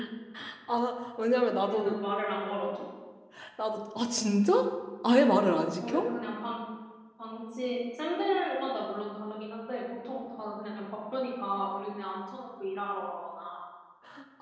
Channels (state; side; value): identical; both; correlation 1.00